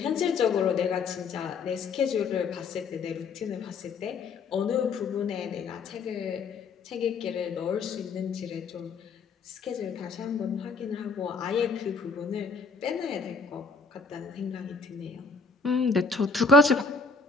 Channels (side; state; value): right; quieter; 4.2 dB